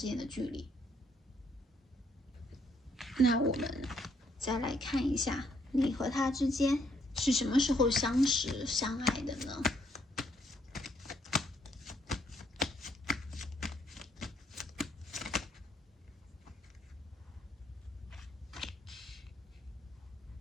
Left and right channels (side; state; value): both; normal; correlation 0.70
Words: 间的距离。那我们再来看一下，你和他之间是什么时候相识相爱的呢？